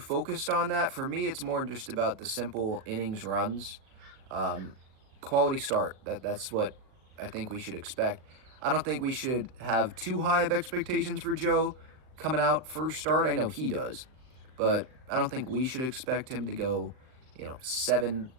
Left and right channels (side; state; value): left; late; 39 ms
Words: on that. For me, it's more just about the simple innings runs. Quality start, that's what I think we should expect. I don't think we should have too high of expectations for Joe coming out first start. I know he does, but I don't think we should expect him to go, 7